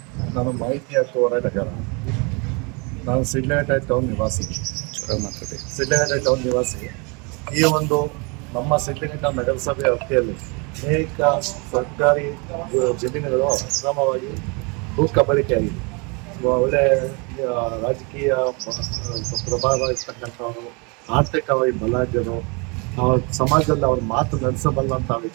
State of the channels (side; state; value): left; quieter; 31.2 dB